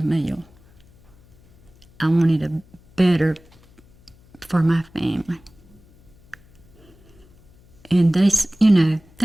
mill. I wanted a better for my family. And they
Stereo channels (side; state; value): left; noise; hum, 28 dB below the sound